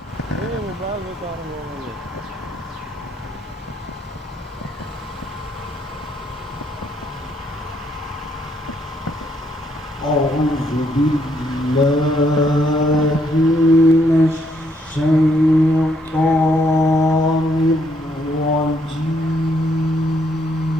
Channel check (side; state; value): both; normal; correlation 0.72